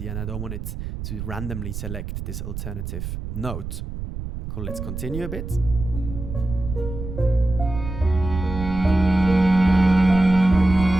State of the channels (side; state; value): right; noise; rumble, 7 dB below the sound